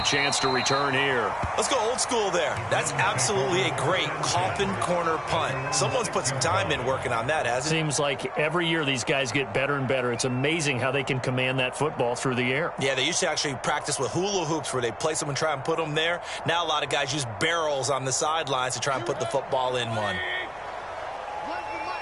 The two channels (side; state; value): right; noise; hum, 28 dB below the sound